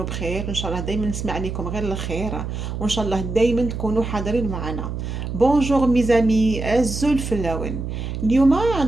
بخير، ان شاء الله دايما نسمع عليكم غير الخير، وان شاء الله دايما تكونوا حاضرين معنا. بونجور ميزامي الزول فلاون. اليوم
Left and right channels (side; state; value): right; noise; hum, 5 dB below the sound